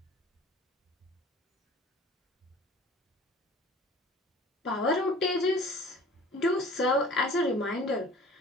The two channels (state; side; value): normal; both; correlation 0.46